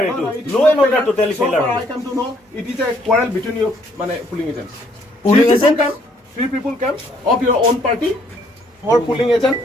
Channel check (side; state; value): both; normal; correlation 0.66